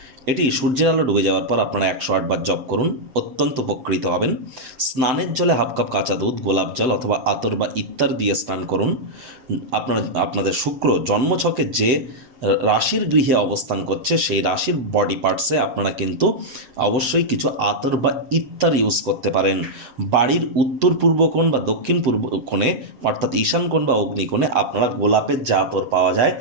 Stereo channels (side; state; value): left; late; 8.1 ms